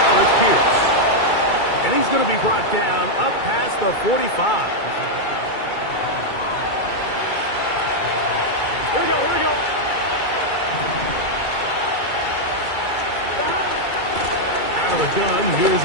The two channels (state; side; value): late; right; 2.3 ms